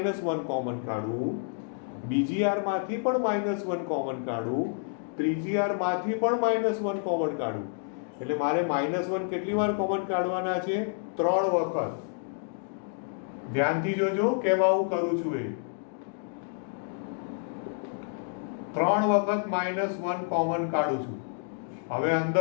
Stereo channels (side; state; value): right; silent; 59 dB below the other